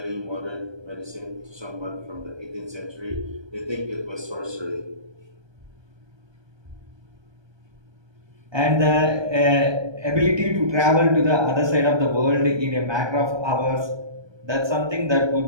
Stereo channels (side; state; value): left; late; 1.2 ms